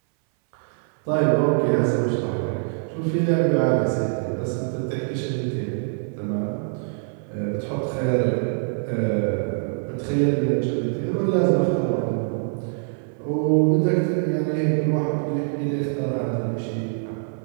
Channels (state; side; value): silent; left; 60 dB below the other